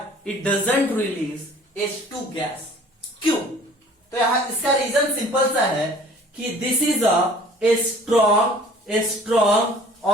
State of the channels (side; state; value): both; normal; correlation 0.50